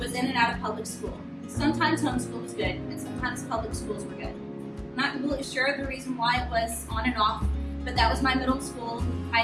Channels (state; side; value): identical; both; correlation 1.00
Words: in and out of public school. Sometimes homeschool was good, and sometimes public schools were good. I'm not completely sure of the reason why it was on and off, but that was my middle school,